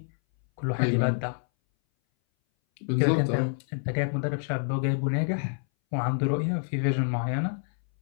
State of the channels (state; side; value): silent; right; 59 dB below the other